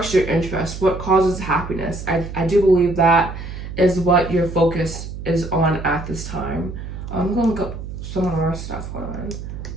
your interest, what causes happiness. I do believe that is what your focus is on at this time. I'm gonna go some more stuff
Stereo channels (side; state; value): right; noise; hum, 9 dB below the sound